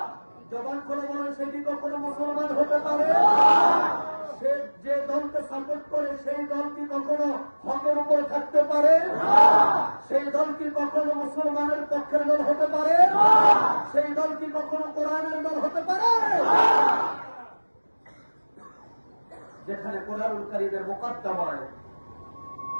জবান করে বলেন, সে কি কখনো মুসলমান হতে পারে? সে যে দলকে সাপোর্ট করে সেই দল কি কখনো হকের উপর থাকতে পারে? সেই দল কি কখনো মুসলমানের পক্ষের দল হতে পারে? সেই দল কি কখনো কোরআনের দল হতে পারে? যেখানে কোরআনুল কারীমের মুকদ্দমায়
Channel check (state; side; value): inverted; both; correlation -1.00